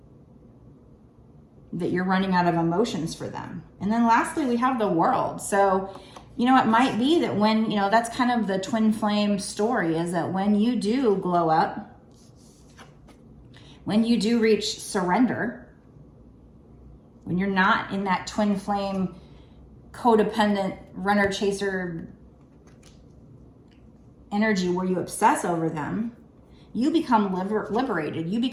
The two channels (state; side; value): identical; both; correlation 1.00